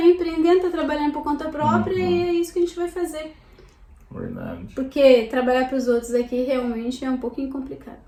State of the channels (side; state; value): both; identical; correlation 1.00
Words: empreendendo, está trabalhando por conta própria e é isso que a gente vai fazer. Verdade. Porque trabalhar para os outros aqui realmente é um pouquinho complicado.